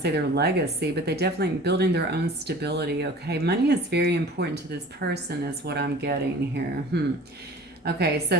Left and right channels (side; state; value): both; normal; correlation 0.43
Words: say their legacy, but they definitely building their own stability, okay? Money is very important to this person is what I'm getting here. Okay, so